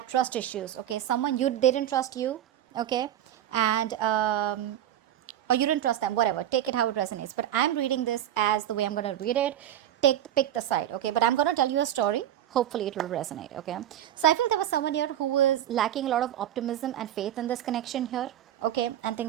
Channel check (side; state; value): left; quieter; 11.7 dB